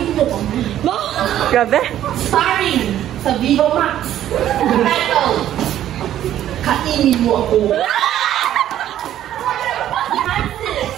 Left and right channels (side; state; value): left; quieter; 11.8 dB